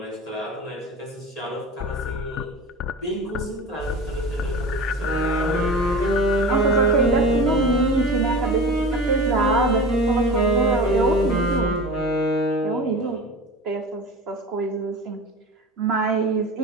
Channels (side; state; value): both; normal; correlation 0.33